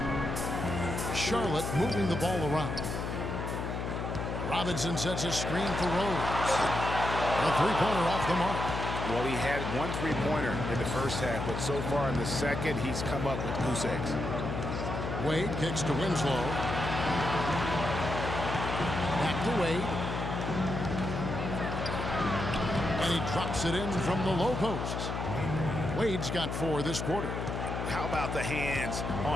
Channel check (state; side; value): noise; left; hum, 3 dB below the sound